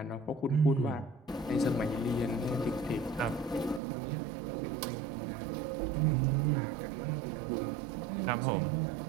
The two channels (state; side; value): drops out; left; at 3.8 s